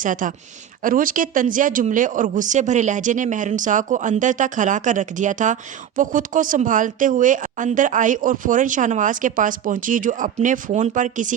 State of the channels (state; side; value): quieter; left; 9.7 dB